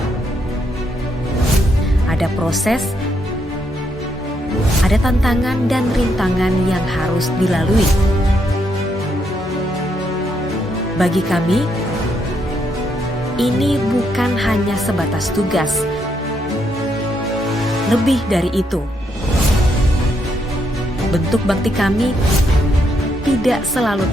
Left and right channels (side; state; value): both; normal; correlation 0.77